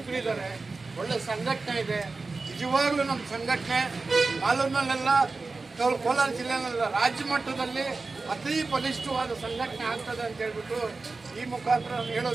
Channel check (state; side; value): quieter; left; 3.8 dB